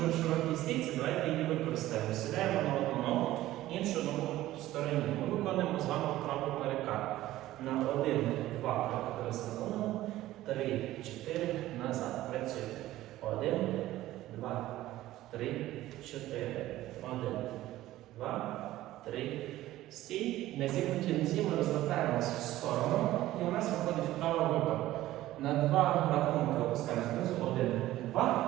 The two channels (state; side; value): quieter; left; 15.3 dB